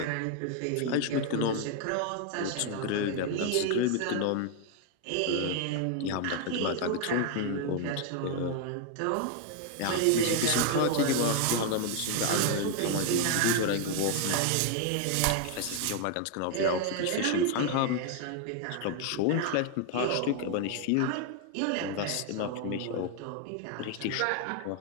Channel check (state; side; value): different; both; correlation 0.00